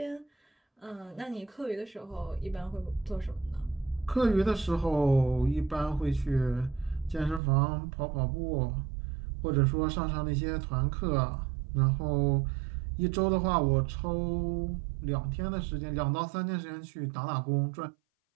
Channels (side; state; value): left; drops out; at 7.4 s